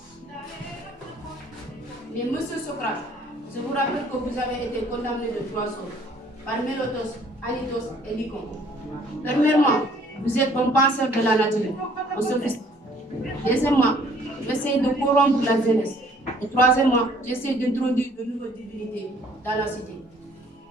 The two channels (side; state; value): both; normal; correlation 0.59